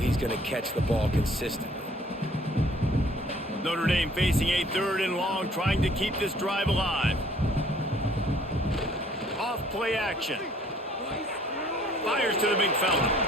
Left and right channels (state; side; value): normal; both; correlation 0.58